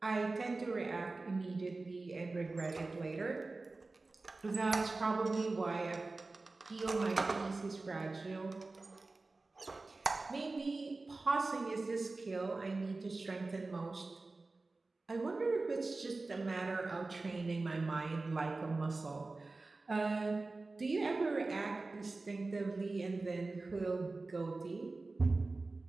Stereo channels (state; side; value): quieter; left; 3.4 dB